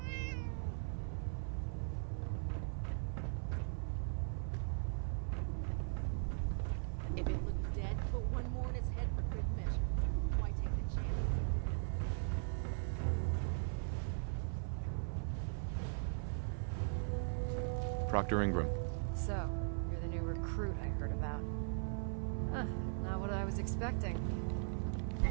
If it looks dead, put one more in its head for good measure. Why take the chance? If Dumb and Ugly had a child, it'd be a super mutant. Proctor Ingram. So, you're the new recruit I heard about. Huh, not what I was expecting.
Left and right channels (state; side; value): silent; left; 51 dB below the other